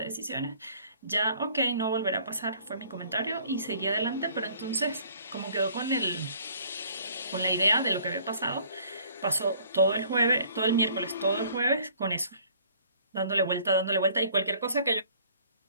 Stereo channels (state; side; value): inverted; both; correlation -0.56